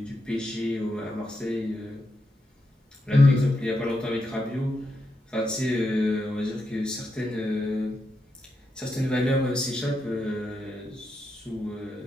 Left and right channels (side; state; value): both; normal; correlation 0.84